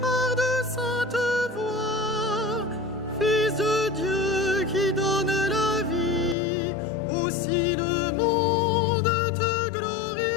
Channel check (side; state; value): right; drops out; at 6.4 s